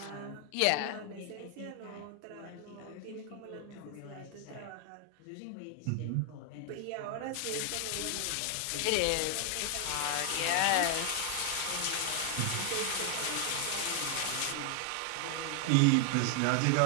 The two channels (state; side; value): different; both; correlation 0.00